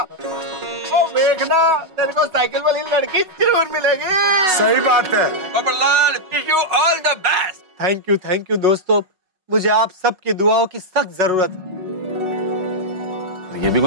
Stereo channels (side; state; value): left; late; 5.4 ms